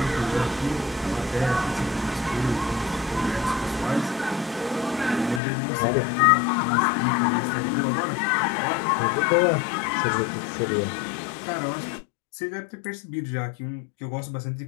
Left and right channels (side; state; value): right; drops out; at 5.4 s